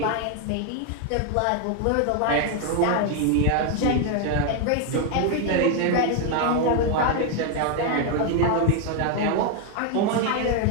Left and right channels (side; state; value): both; different; correlation 0.01